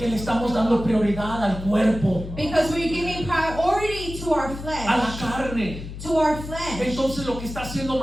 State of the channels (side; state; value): left; noise; hum, 10 dB below the sound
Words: le estamos dando prioridad al cuerpo. Because we're giving priority to to our a la flesh. carne. To our flesh. Entonces lo que está haciendo